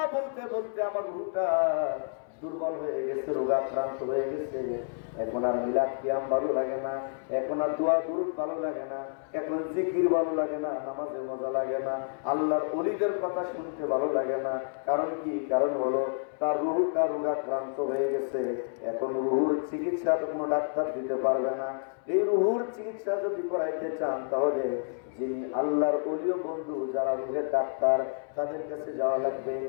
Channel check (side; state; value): right; silent; 58 dB below the other